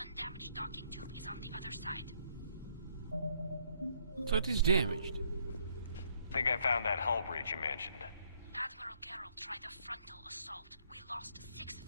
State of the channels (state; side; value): inverted; both; correlation -0.68